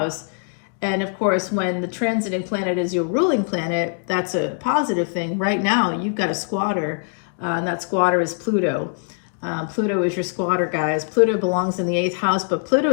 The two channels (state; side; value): silent; right; 64 dB below the other